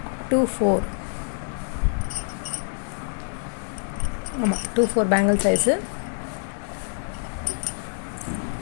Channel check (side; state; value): right; silent; digital silence